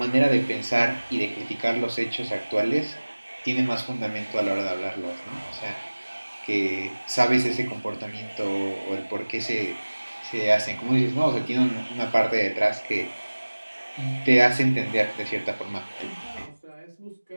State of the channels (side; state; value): both; inverted; correlation -1.00